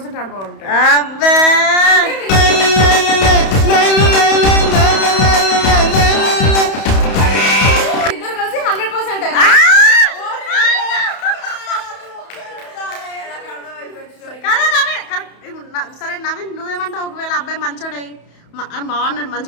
ఆడ బాగుంటా అబ్బే ఇద్దరు కలిసి 100% సరే నవీన్ నువ్వేమంటావు ఒకవేళ అబ్బాయి మంచోడై బాగున్నాడు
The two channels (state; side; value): late; right; 31 ms